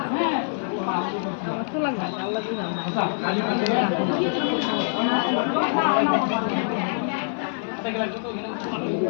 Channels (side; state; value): right; silent; 56 dB below the other